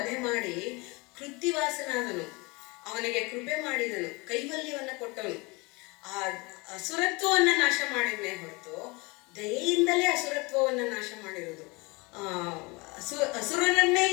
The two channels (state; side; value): quieter; right; 26.4 dB